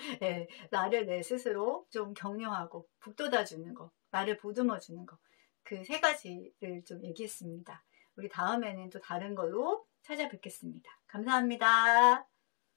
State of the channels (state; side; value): quieter; right; 39.8 dB